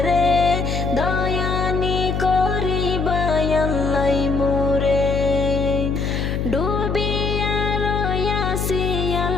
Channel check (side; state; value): left; noise; hum, 1 dB below the sound